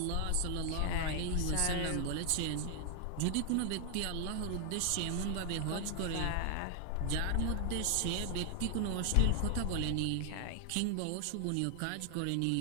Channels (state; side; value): different; both; correlation 0.00